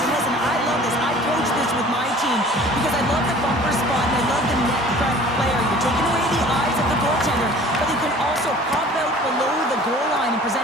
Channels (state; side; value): normal; both; correlation 0.47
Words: And listen, I love this. I coach this with my team because I love the bumper spot and I love the net front player. You're taking away the eyes of the goaltender, but you can also pop out below the goal line and